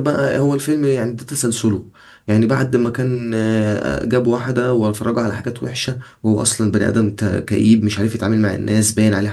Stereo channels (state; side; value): identical; both; correlation 1.00